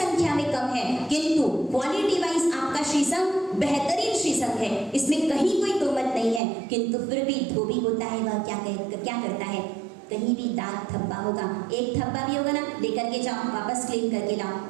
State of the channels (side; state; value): left; drops out; at 6.4 s